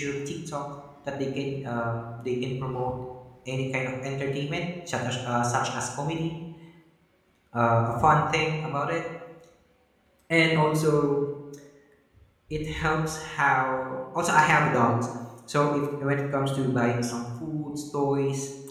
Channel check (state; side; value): identical; both; correlation 1.00